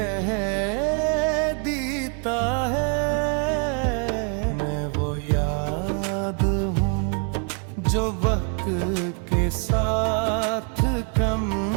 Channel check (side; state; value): left; quieter; 39.8 dB